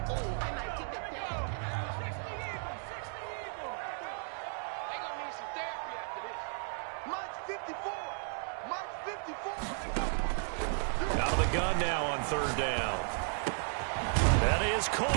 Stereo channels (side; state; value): left; silent; 55 dB below the other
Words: Out of the gun now on 3rd down. That is